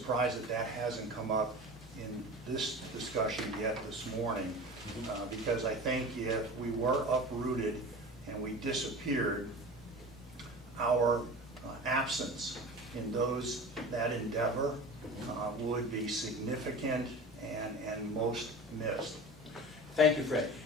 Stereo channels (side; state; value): both; normal; correlation 0.35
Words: that that hasn't come up in this discussion yet this morning, because I think if we were uprooted and we disappeared, our absence in that endeavor would be significant and most missed. Thank you, Fred.